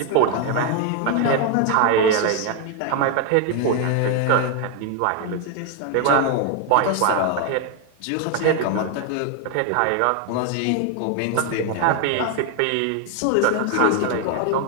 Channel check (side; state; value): both; different; correlation 0.01